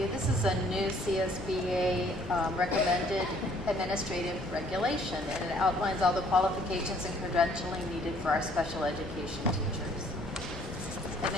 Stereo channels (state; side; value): normal; both; correlation 0.60